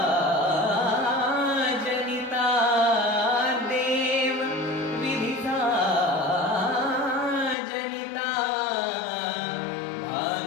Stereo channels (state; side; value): drops out; right; at 7.6 s